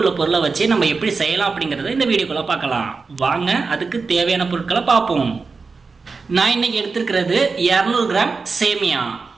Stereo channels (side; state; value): left; quieter; 4.5 dB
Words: பொருளை வச்சு நம்ம எப்படி செய்யலாம் அப்படிங்கறத இந்த வீடியோக்குள்ள பார்க்கலாம். வாங்க அதுக்கு தேவையான பொருட்களை பார்ப்போம். நான் இன்னைக்கு எடுத்துக்கிறது 200 கிராம் சேமியா,